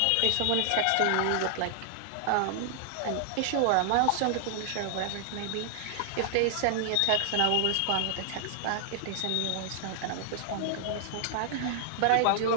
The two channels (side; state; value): both; different; correlation 0.00